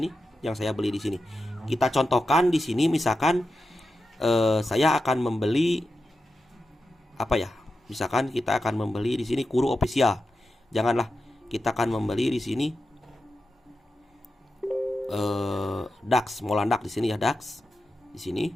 yang saya beli di sini. Kita contohkan di sini misalkan saya akan membeli apa ya? Misalkan kita akan membeli di sini Kuru official. Janganlah, kita akan membeli di sini DAX, Molandak di sini ya, DAX di sini.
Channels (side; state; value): both; normal; correlation 0.90